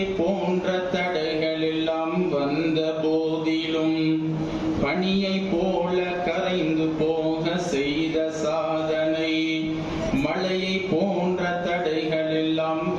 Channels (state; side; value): identical; both; correlation 1.00